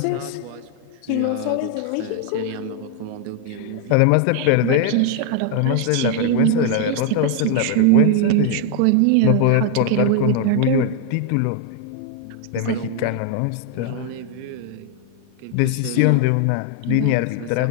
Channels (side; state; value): both; different; correlation 0.00